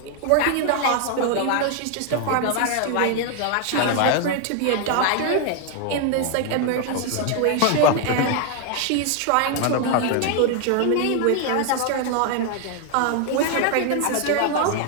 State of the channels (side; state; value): both; different; correlation 0.00